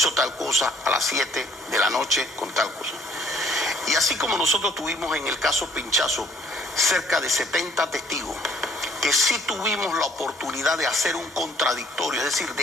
tal cosa a las 7 de la noche con tal cosa. Y así como nosotros tuvimos en el caso Pinchazo cerca de 70 testigos, que sí tuvimos la oportunidad de hacer un contradictorio, es decir,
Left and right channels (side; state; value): both; normal; correlation 0.59